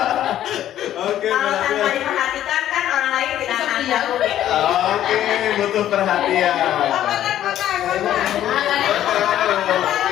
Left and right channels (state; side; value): quieter; right; 11.9 dB